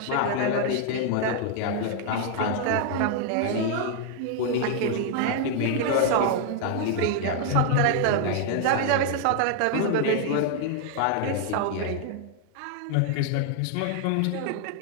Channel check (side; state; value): both; different; correlation 0.00